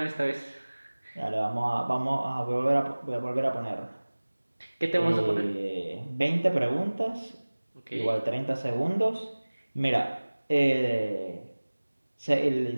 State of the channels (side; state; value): both; inverted; correlation -1.00